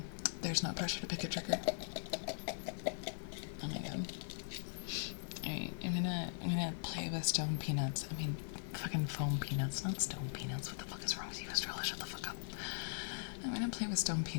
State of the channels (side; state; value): right; silent; digital silence